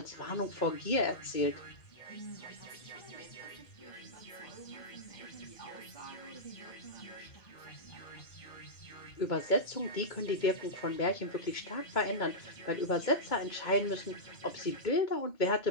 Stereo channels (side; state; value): right; late; 2.2 ms